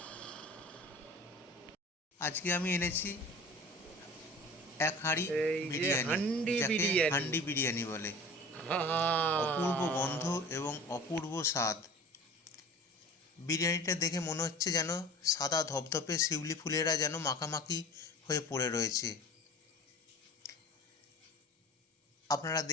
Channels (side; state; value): both; normal; correlation 0.40